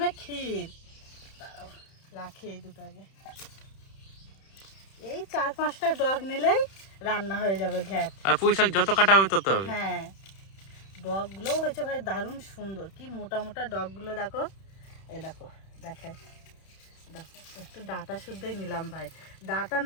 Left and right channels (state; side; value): late; right; 31 ms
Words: ক্ষীর। দাঁড়াও রাখি এই দুটো আগে। এই 4-5টা ডগ নিলেই রান্না হয়ে যাবে ঘ্যাট। আর পুঁই শাক যত কাটা হবে তত হবে। হ্যাঁ, ডগগুলোও হয়েছে ভাই দারুণ সুন্দর, কি মোটা মোটা ডগগুলো দেখো। এই দেখো, দেখাই, দেখো একটু ডাটা শুদ্ধই নিলাম ভাই, ডাটা